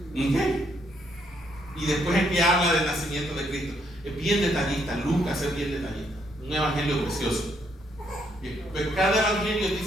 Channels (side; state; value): both; normal; correlation 0.72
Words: ¿Okay? Y después es que habla del nacimiento de Cristo. Es bien detallista. Lucas es bien detallista. Un evangelio precioso. Pero cada evangelio es